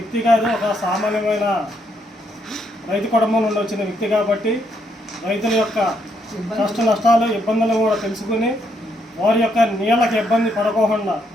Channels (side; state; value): both; normal; correlation 0.75